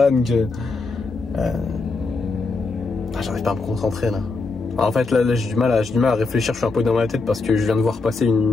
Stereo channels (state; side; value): quieter; right; 3.8 dB